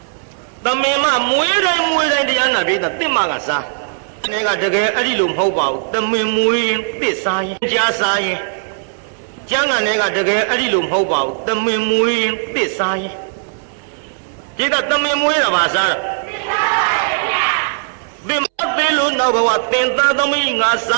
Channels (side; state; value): left; silent; 68 dB below the other